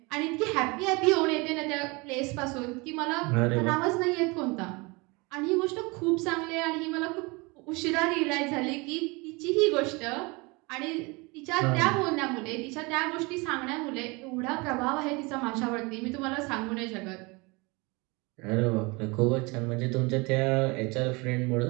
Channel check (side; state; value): left; quieter; 26.7 dB